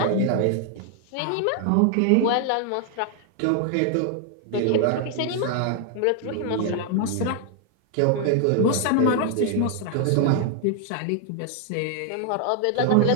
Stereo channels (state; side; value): different; both; correlation 0.00